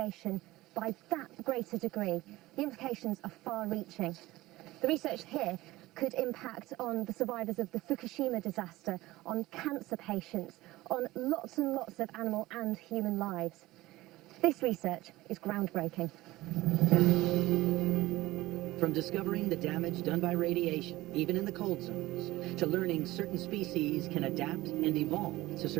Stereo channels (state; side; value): quieter; left; 18.2 dB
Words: by that greater degree, the implications are far-reaching. The research here could impact on the survivors of the Fukushima disaster, on cancer patients, on lots and lots of animal and human lives. This research is groundbreaking. From discovering the damage done by radiation, even in the cold zones, to learning certain species can adapt and evolve to